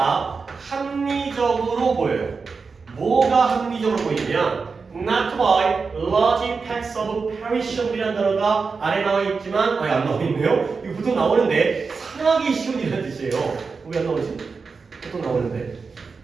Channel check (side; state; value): left; quieter; 4.8 dB